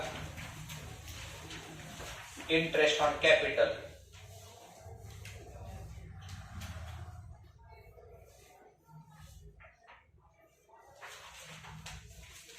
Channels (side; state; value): both; identical; correlation 1.00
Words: इंटरेस्ट ऑन कॅपिटल.